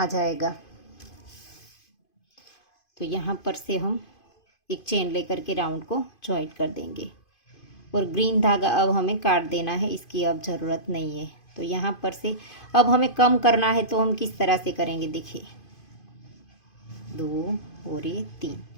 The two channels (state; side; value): late; right; 2.5 ms